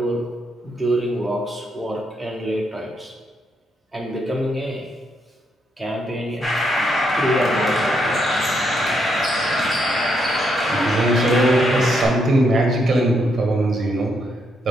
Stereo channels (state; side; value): normal; both; correlation 0.77